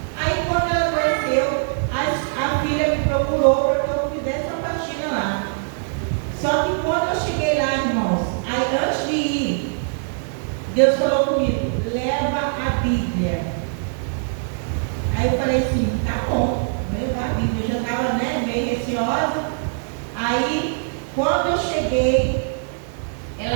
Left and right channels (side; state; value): left; silent; digital silence